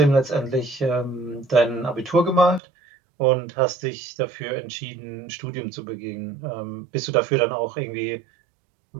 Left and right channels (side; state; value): left; drops out; at 2.6 s